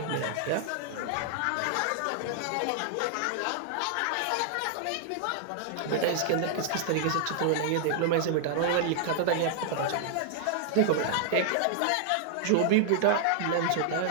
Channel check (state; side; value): different; both; correlation 0.00